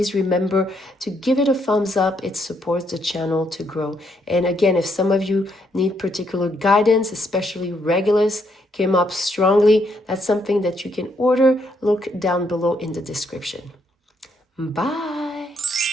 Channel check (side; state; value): both; normal; correlation 0.74